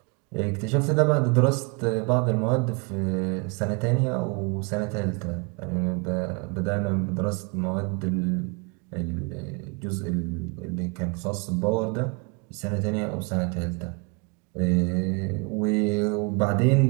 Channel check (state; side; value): quieter; left; 31.8 dB